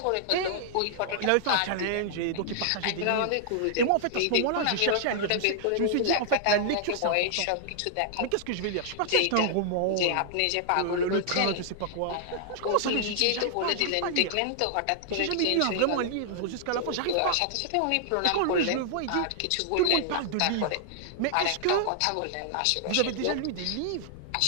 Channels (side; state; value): both; different; correlation -0.01